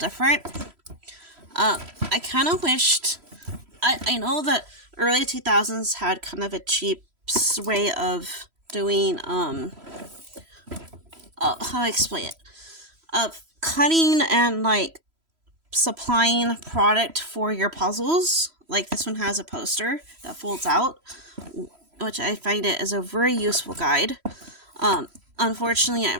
I kind of wished... I know that early 2000s had kind of a cheap way of doing, how do I explain it? Of cutting and, supplying product for your puzzles. Like this one has a poster that folds out, which I find it is a very useful guide. Unfortunately,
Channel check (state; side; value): late; left; 3.0 ms